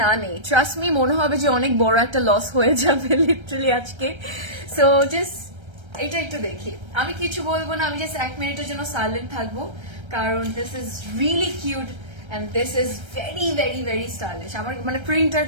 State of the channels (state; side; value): late; left; 1.3 ms